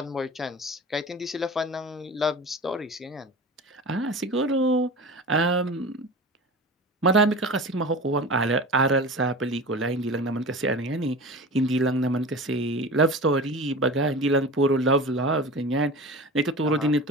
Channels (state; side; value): normal; both; correlation 0.33